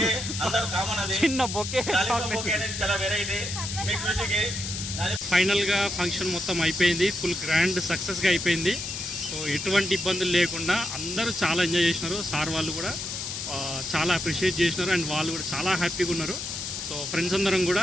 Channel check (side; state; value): left; noise; hiss, 5 dB below the sound